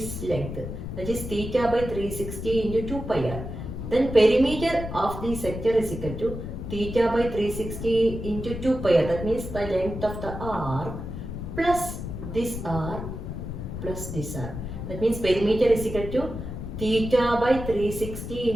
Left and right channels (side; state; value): left; noise; rumble, 7 dB below the sound